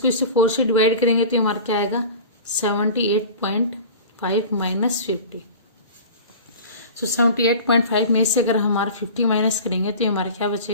इससे 4 से डिवाइड करेंगे तो हमारा क्या आएगा 78.5 माइनस 50। 78.5 में से अगर हमारा 50 माइनस करेंगे तो हमारा क्या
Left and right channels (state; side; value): inverted; both; correlation -0.37